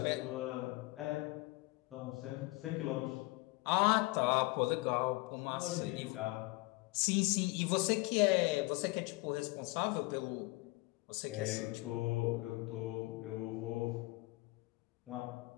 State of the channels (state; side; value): quieter; right; 23.3 dB